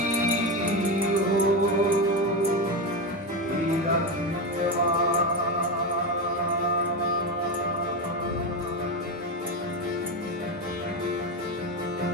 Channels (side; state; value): both; normal; correlation 0.15